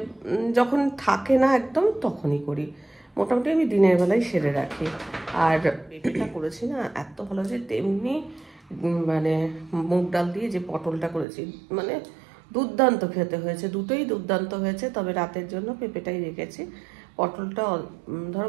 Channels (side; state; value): left; drops out; at 11.2 s